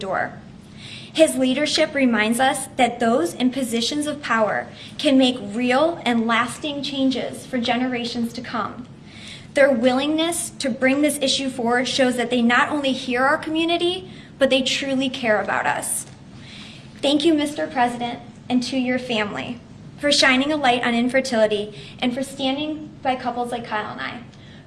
His leadership reminds us that those in positions of power can make real and lasting changes for generations to come. Their willingness to bring this issue forward shows that they not only hear our community, but they truly care about us. Thank you, Mr. President, and to your family for shining a light on infertility and for standing by couples like Kyle and I,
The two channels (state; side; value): identical; both; correlation 1.00